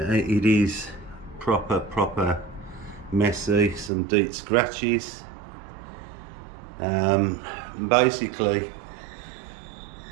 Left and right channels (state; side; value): drops out; left; at 3.9 s